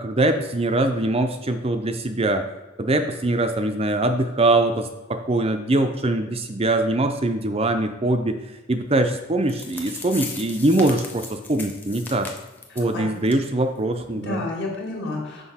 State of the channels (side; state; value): both; normal; correlation 0.54